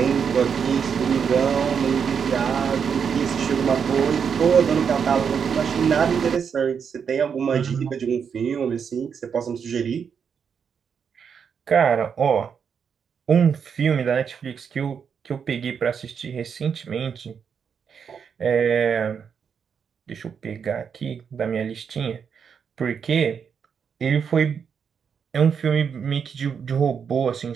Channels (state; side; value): quieter; left; 6.9 dB